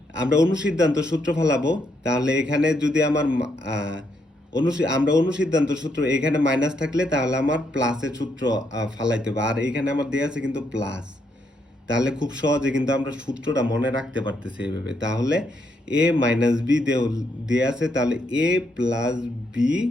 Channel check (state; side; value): normal; both; correlation 0.76